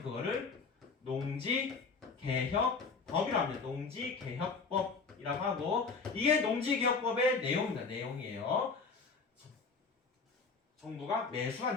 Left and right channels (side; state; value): right; quieter; 4.7 dB